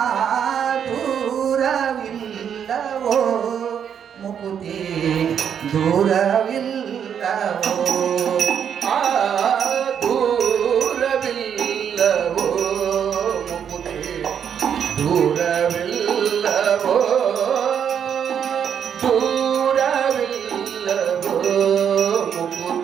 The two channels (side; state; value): left; quieter; 8.2 dB